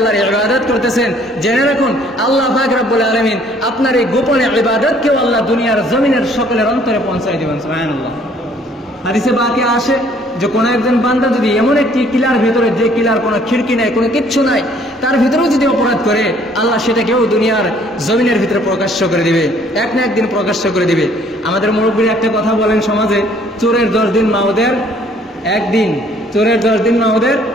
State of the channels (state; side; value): normal; both; correlation 0.60